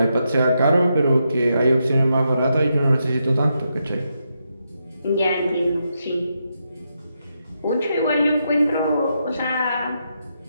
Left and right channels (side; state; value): both; inverted; correlation -0.83